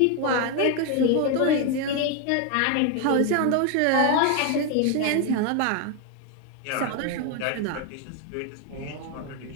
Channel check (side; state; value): both; different; correlation 0.01